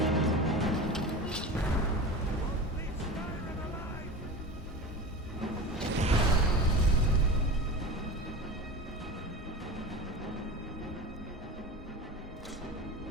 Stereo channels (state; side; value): normal; both; correlation 0.31